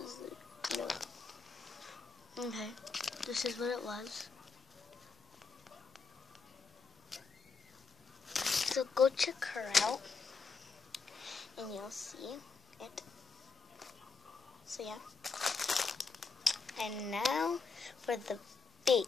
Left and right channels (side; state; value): right; quieter; 4.6 dB